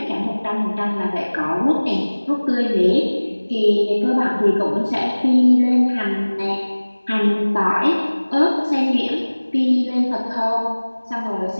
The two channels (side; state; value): both; inverted; correlation -1.00